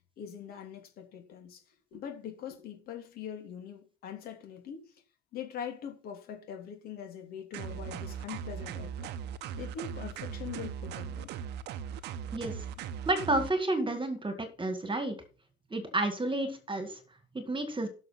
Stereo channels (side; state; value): both; normal; correlation 0.39